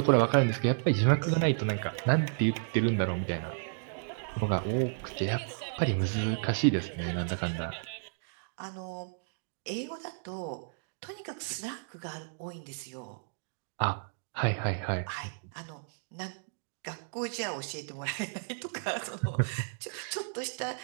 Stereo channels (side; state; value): left; silent; digital silence